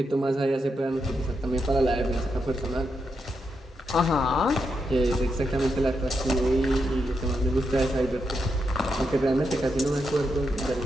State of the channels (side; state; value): both; normal; correlation 0.83